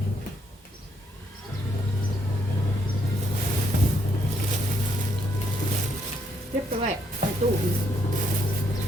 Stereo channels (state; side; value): normal; both; correlation 0.74